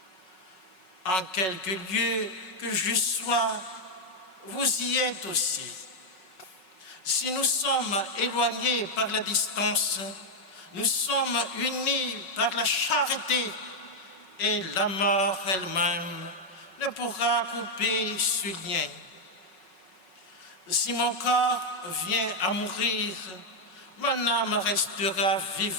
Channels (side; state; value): right; late; 5.4 ms